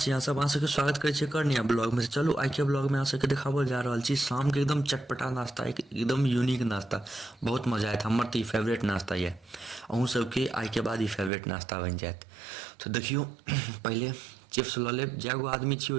अहाँ सब? अहाँ सबके स्वागत करै छी कर नया ब्लॉग में। चलू आइ के ब्लॉग में अहाँ सबके देखाबल जा रहल छी शाम के एकदम चटपटा नाश्ता, एकदम यूनिक नाश्ता। बहुत मजा आयत। हमर तऽ ई फेवरेट नाश्ता ये, अहूँ सबके आइ के बाद ई फेवरेट नाश्ता बनि जायत। तो देखियो पहले चिप्स लऽ लेब। जै गो आदमी छी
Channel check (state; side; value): drops out; left; at 11.3 s